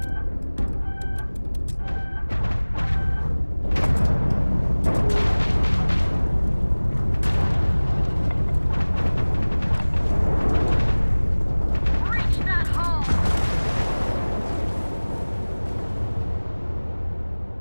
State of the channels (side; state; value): both; inverted; correlation -1.00